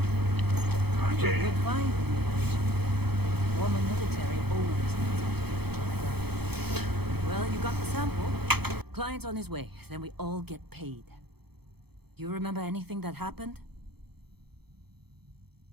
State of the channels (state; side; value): late; left; 0.97 ms